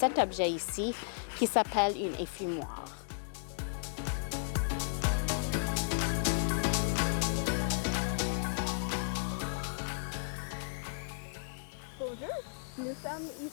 objet ici qui s'appelle une effumoir. Bonjour, nous sommes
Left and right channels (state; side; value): silent; right; digital silence